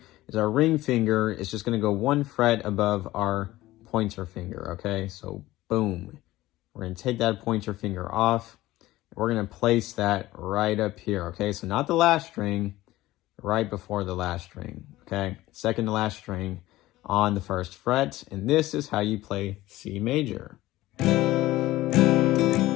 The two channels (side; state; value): right; quieter; 16.9 dB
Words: is our ring finger is just going to go 1 fret above our pointer finger, okay? So boom. We're going to take that pointer finger off. We're going to place that right up here, okay? So not the last string, right before the last string, okay? Second to last string on the first fret, and this is how you play C major.